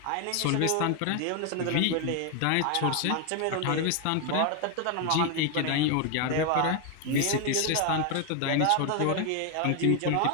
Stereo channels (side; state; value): both; different; correlation 0.01